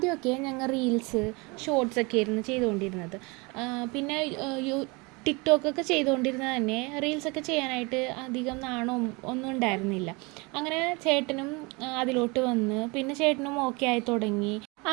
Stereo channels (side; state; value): left; quieter; 27.4 dB